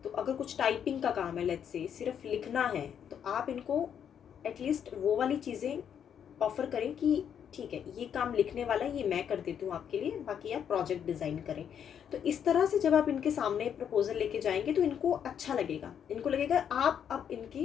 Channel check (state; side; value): quieter; right; 8.5 dB